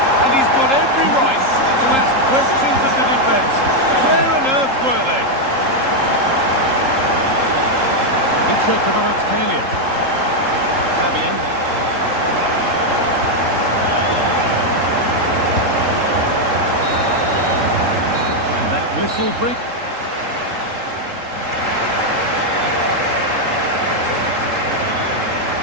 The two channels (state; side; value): late; left; 3.8 ms